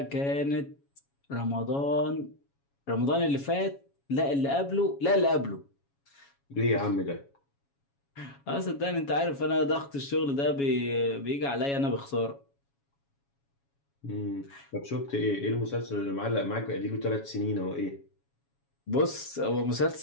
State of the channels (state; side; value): late; right; 7.2 ms